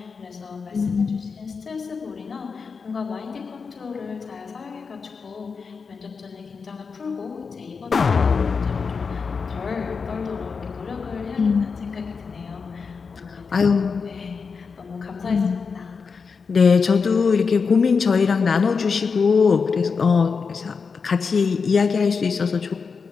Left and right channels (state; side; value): quieter; right; 5.2 dB